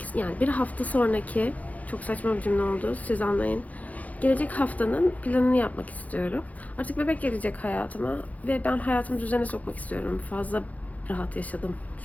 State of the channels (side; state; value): right; late; 0.074 ms